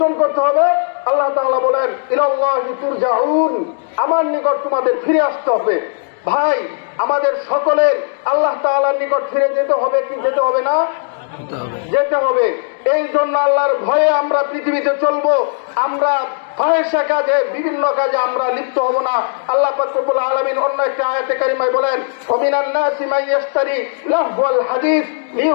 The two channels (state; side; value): silent; right; digital silence